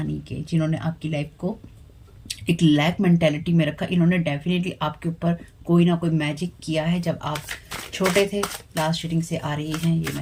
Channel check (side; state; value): both; identical; correlation 1.00